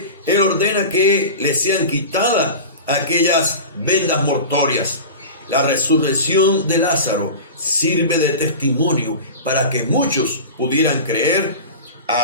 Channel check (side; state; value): both; inverted; correlation -0.31